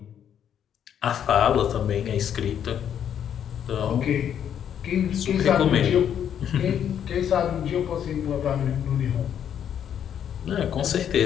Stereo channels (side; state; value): right; quieter; 9.1 dB